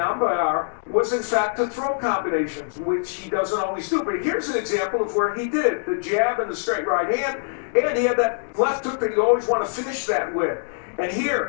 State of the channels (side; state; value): right; silent; digital silence